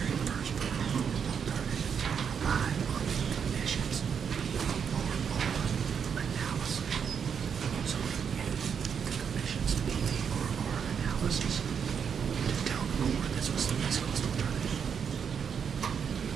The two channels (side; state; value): left; quieter; 7.1 dB